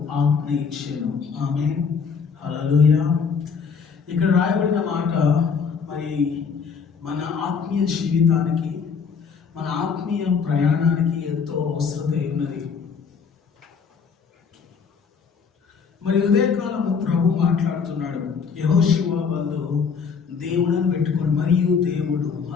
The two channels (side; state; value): right; quieter; 6.0 dB